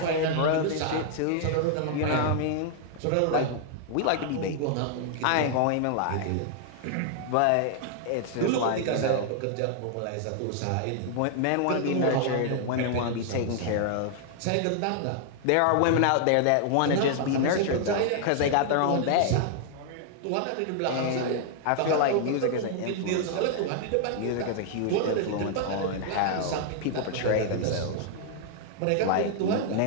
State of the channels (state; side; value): different; both; correlation 0.00